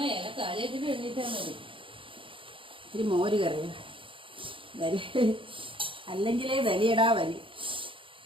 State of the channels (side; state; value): left; late; 0.25 ms